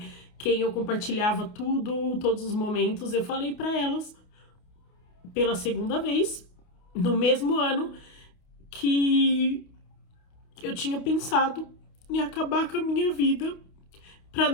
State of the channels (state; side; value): late; right; 28 ms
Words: Quem eu compartilhava tudo, todos os momentos, eu falei pra elas, pela segunda vez, no mesmo ano, que eu tinha pensado em acabar com a minha vida pra